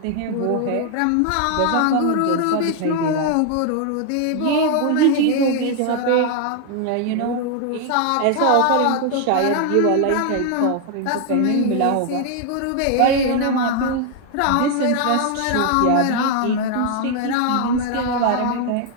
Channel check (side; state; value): both; different; correlation 0.00